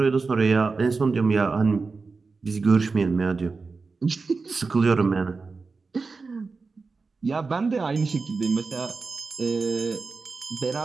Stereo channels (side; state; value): left; quieter; 4.3 dB